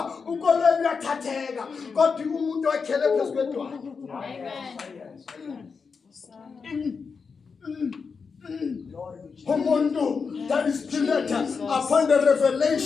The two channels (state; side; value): quieter; right; 5.3 dB